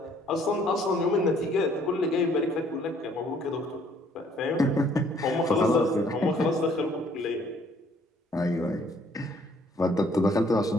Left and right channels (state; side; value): normal; both; correlation 0.62